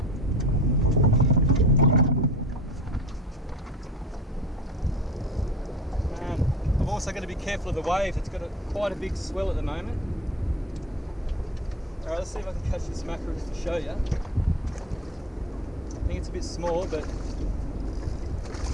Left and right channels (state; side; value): normal; both; correlation 0.39